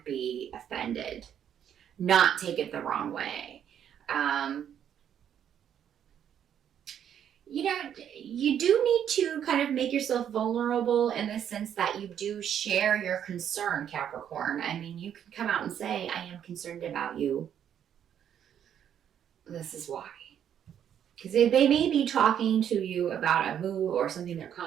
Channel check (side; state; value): left; quieter; 9.3 dB